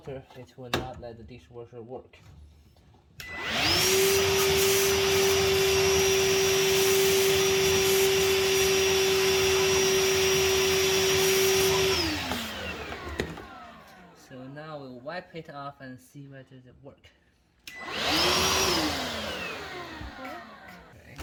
it will not let the dishwasher work. So now we'll wipe it off and see whether it works. Okay,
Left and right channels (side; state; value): both; identical; correlation 1.00